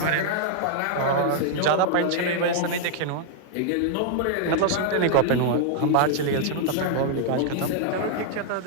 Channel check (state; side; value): different; both; correlation 0.00